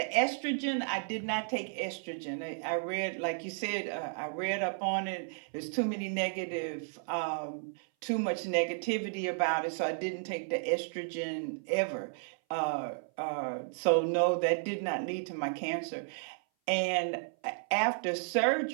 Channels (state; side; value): silent; left; 56 dB below the other